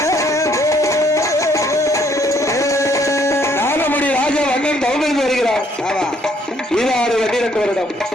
நாகமுடி ராஜா வண்ணன் தவமிருந்து வருகிறார். ஈராறு 12 வருடம்.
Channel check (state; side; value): normal; both; correlation 0.66